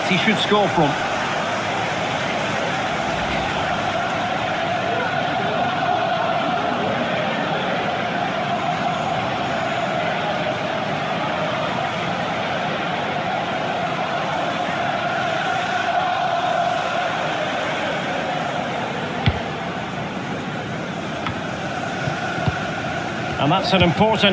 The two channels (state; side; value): identical; both; correlation 1.00